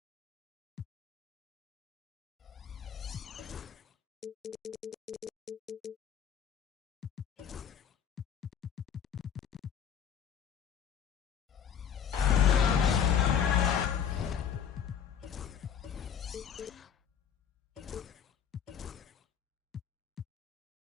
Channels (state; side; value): quieter; right; 8.3 dB